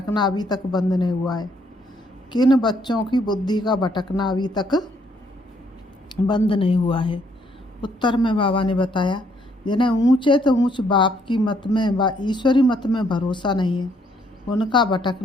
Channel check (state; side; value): normal; both; correlation 0.69